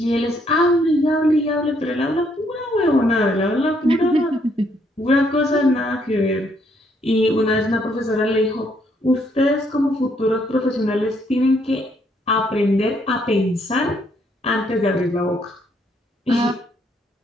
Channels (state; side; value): normal; both; correlation 0.71